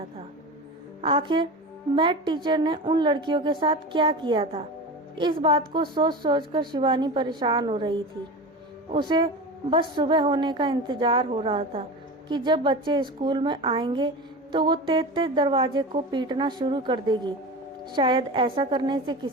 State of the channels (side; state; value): both; normal; correlation 0.28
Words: था। आखिर मैथ टीचर ने उन लड़कियों के साथ क्या किया था? इस बात को सोच सोचकर शिवानी परेशान हो रही थी। उसे बस सुबह होने का इंतजार हो रहा था कि जब बच्चे स्कूल में आएंगे तो वो तेज तेज दरवाजे को पीटना शुरू कर देगी। शायद ऐसा करने से